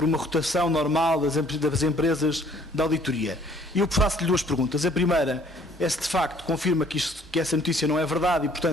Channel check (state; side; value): normal; both; correlation 0.58